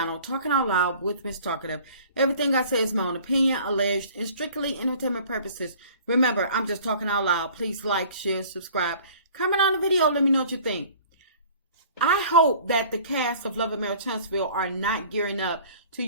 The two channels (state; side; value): inverted; both; correlation -0.49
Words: Talking Out Loud with Miss Talkative. Everything I say is my own opinion, alleged, and strictly entertainment purposes. Remember, I'm just talking out loud. Please like, share, subscribe, comment on the video, let me know what you think. I hope that the cast of Melometers are not gearing up to